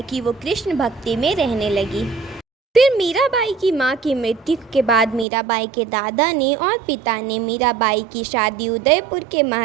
कि वो कृष्ण भक्ति में रहने लगी। फिर मीराबाई की माँ की मृत्यु के बाद मीराबाई के दादा ने और पिता ने मीराबाई की शादी उदयपुर के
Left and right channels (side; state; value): left; drops out; at 5.2 s